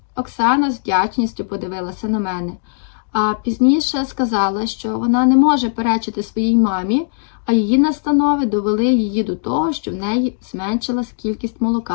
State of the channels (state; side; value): silent; right; digital silence